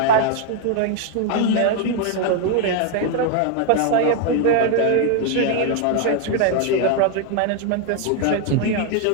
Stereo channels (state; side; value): different; both; correlation 0.00